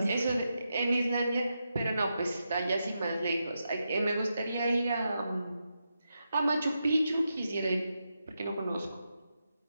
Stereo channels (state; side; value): inverted; both; correlation -0.87